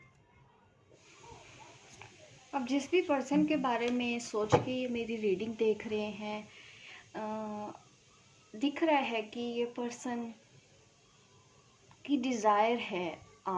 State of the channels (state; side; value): identical; both; correlation 1.00